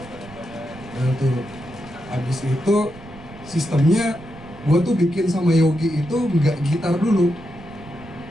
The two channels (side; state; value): right; noise; rumble, 18 dB below the sound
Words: Nah tuh abis itu sistemnya gue tuh bikin sama Yogi itu nggak gitar dulu,